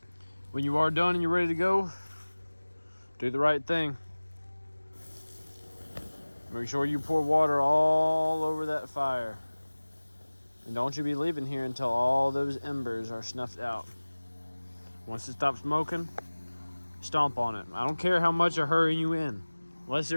When you are done and you're ready to go, do the right thing. Make sure you pour water all over that fire. And don't you be leaving here until all those embers are snuffed out. Once it stops smoking, stomp on it. I don't care how much they're hurrying you in. Unless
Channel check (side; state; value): both; inverted; correlation -1.00